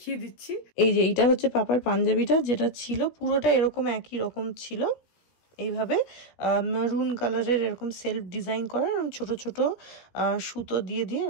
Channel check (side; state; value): right; late; 17 ms